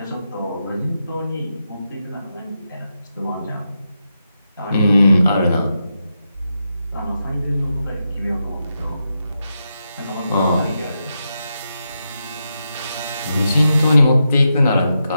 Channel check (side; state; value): both; inverted; correlation -0.86